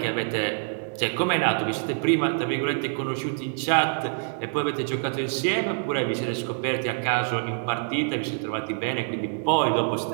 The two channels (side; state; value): left; silent; 61 dB below the other